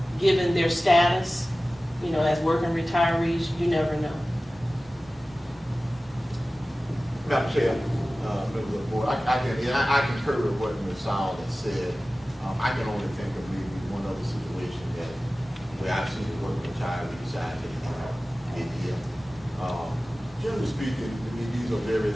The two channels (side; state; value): both; normal; correlation 0.96